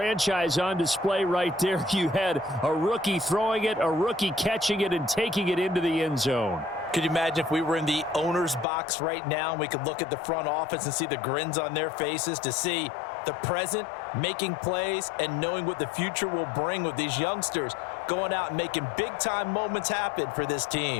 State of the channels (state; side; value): drops out; right; at 8.7 s